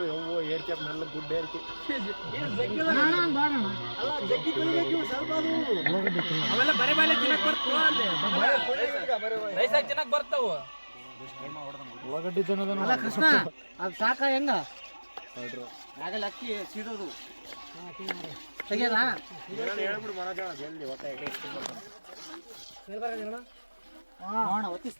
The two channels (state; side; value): inverted; both; correlation -1.00